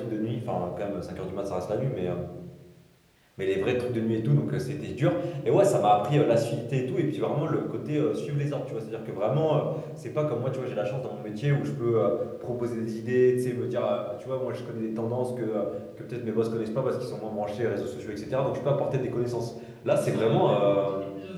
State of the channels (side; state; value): both; identical; correlation 1.00